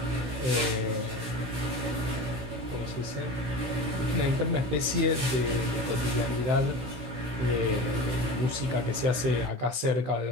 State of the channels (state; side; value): late; left; 16 ms